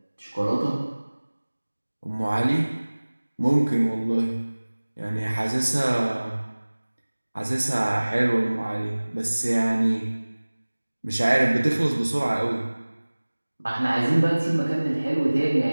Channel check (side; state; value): both; inverted; correlation -1.00